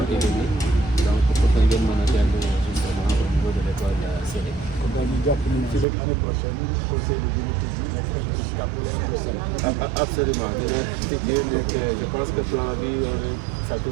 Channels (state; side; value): drops out; left; at 5.9 s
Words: et demi donc pour que ngeen mën a dellu justement au niveau de l'école CD. kon daal ñu jàpp ni ci rek année prochaine conseil de dina tëj nekk N+4 wala N+5. Absolument dina tëjee nekk je pense que plan bi ça